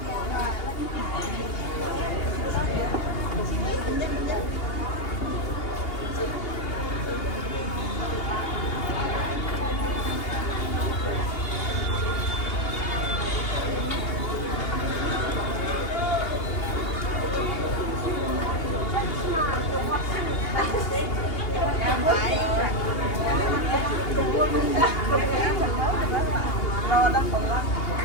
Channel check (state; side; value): late; right; 2.8 ms